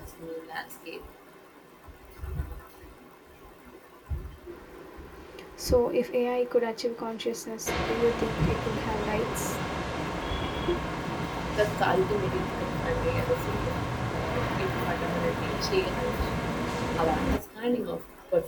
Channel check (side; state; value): both; identical; correlation 1.00